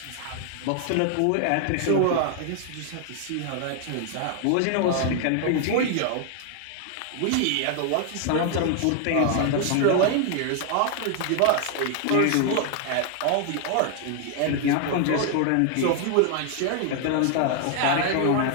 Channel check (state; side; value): different; both; correlation 0.00